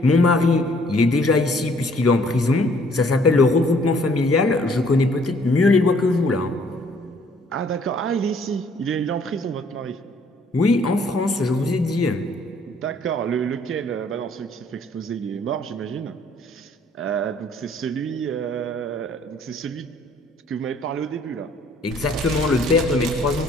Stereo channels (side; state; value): both; normal; correlation 0.61